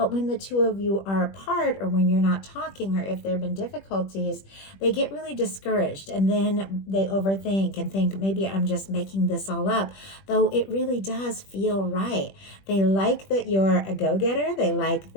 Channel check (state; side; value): late; right; 21 ms